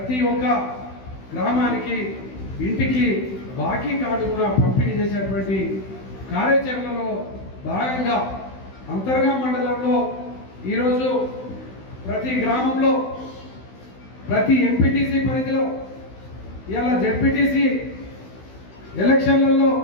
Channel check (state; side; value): late; right; 16 ms